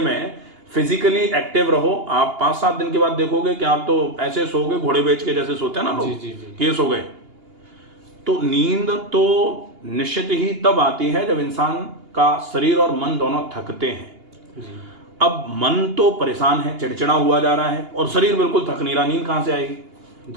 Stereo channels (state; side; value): late; left; 2.8 ms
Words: फिजिकली एक्टिव रहो। आप 5-7 दिन के बाद देखोगे कि आप तो ऐसे सोओगे घोड़े बेच के जैसे सोते हैं ना लोग, कि ये सो गए। तो नींद तो निश्चित ही तब आती है जब इंसान का शरीर और मन दोनों थकते हैं। अब मन तो परेशान है, चिड़चिड़ा हुआ जा रहा है, और शरीर बिल्कुल थक नहीं रहा, नींद कहां से आएगी?